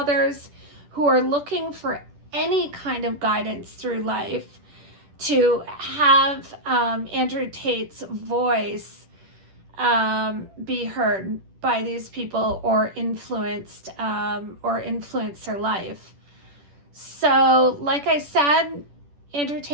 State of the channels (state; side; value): late; left; 10 ms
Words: who are looking for any kind of guidance through life to have Andrew Tate's voice be heard by these people or influence their life. So, like I said, Andrew